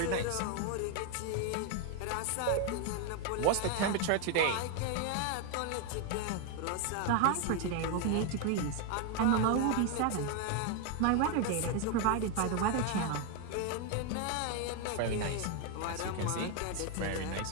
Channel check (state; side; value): different; both; correlation 0.01